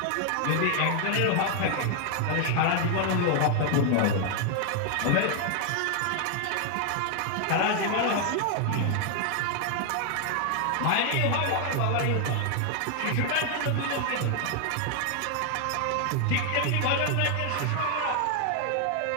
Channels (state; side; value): different; both; correlation 0.00